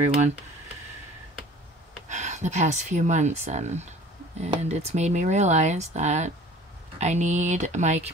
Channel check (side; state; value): both; normal; correlation 0.47